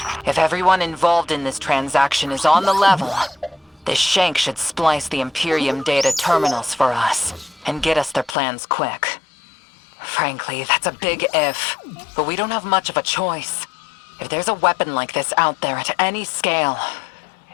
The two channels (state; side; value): drops out; right; at 8.3 s